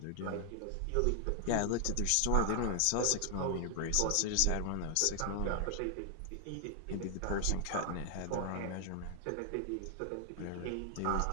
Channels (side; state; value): both; different; correlation 0.00